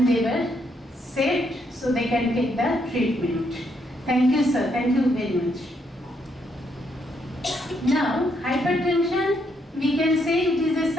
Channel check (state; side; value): normal; both; correlation 0.75